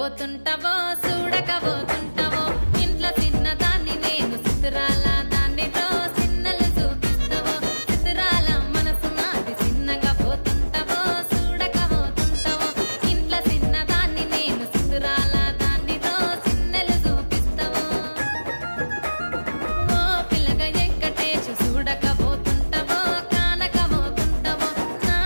చూడకపోతుంటావో ఇంట్లో చిన్నదాన్ని నేను చిత్రాల దాన్నితో చిన్నలు చూపిస్తావో చిత్రాల మనసు నాది చిన్నగా పోతుంటావో చూడకపోతుంటావో ఇంట్లో చిన్నదాన్ని నేను చిత్రాల దాన్నితో చిన్నలు చూపిస్తావో ఓ పిల్లగా వెంకటేశు చూడకపోతుంటావో కానకపోతుంటావో నా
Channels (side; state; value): both; inverted; correlation -1.00